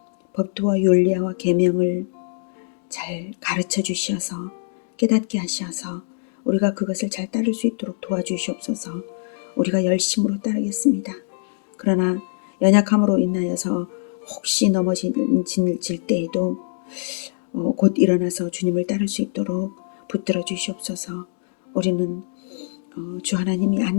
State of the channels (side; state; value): right; silent; digital silence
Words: 법도와 율례와 계명을 잘 가르쳐 주셔서 깨닫게 하셔서 우리가 그것을 잘 따를 수 있도록 도와주시옵소서. 우리가 열심으로 따르겠습니다. 그러나 연약함으로 인하여서 혹시 넘어질 때에도 곧 일어나서 주님을 따를 수 있도록 붙들어 주시옵소서. 우리는 주 하나님이